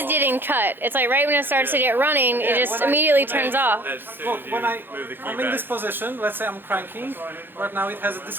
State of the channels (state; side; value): late; left; 0.099 ms